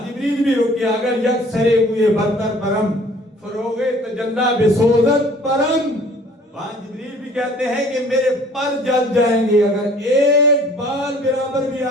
جبریل بھی رکے، اگر یک سرے ہوئے برتر پرم فروغ تجلا بسوزت پرم، وہاں جبریل بھی کہتے ہیں کہ میرے پر جل جائیں گے اگر ایک بال برابر بھی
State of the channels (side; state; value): both; normal; correlation 0.53